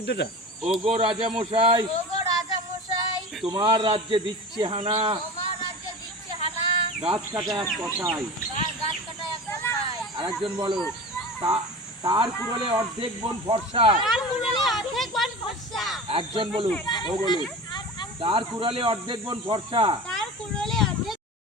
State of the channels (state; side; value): normal; both; correlation 0.33